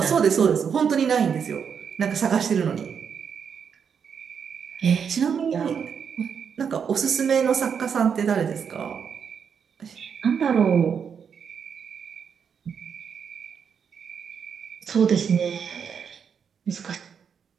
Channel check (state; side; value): quieter; left; 7.0 dB